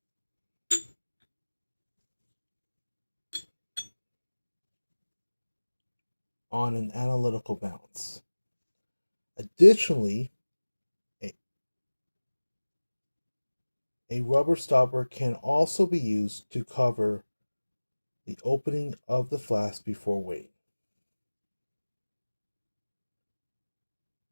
on an analytical balance. Additionally, a rubber stopper can also be used to cover the opening of the flask before weighing.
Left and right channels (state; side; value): inverted; both; correlation -1.00